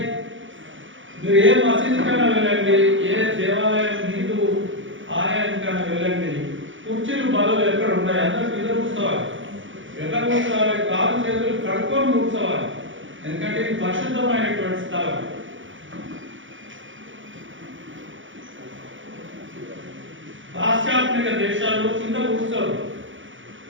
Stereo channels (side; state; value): left; late; 0.56 ms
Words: మీరు ఏ మసీదు కన్నా వెళ్ళండి, ఏ దేవాలయం హిందూ ఆలయానికన్నా వెళ్ళండి, కుర్చీలు బలలు ఎక్కడ ఉన్నాయి, అందరూ కింద కూర్చోవాలి. ఎట్లా కూర్చోవాలి? కాలు చేతులు కడుక్కొని కూర్చోవాలి. ఎందుకంటే ఇది పరిశుద్ధమైనటువంటి స్థలం. పాశ్చాత్య దేశాల్లో కింద కూర్చోరు.